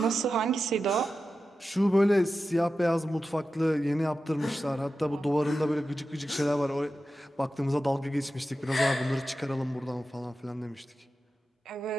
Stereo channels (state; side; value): normal; both; correlation 0.92